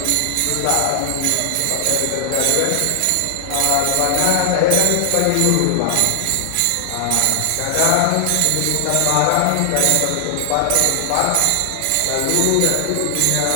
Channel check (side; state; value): both; different; correlation 0.00